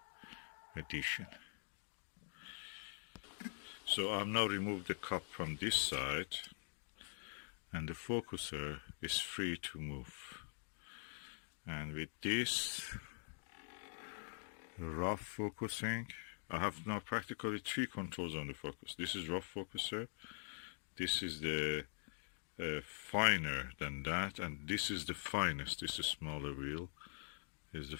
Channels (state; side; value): silent; right; digital silence